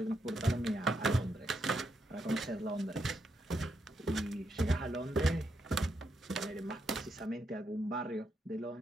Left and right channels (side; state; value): both; normal; correlation 0.81